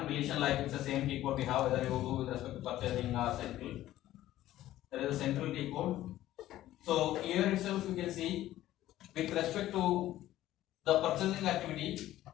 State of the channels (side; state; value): right; quieter; 14.3 dB